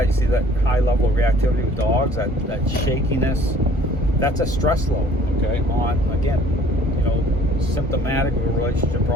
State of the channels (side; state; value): both; normal; correlation 0.54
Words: You see that high level of reactivity with dogs, that shakiness. That's a stress load, okay, on, again, you know, symptomatic of a relationship